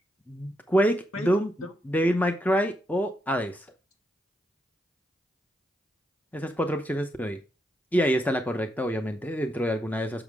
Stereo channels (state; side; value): normal; both; correlation 0.81